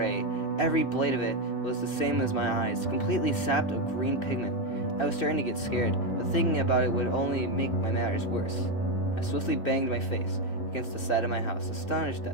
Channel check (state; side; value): late; right; 2.6 ms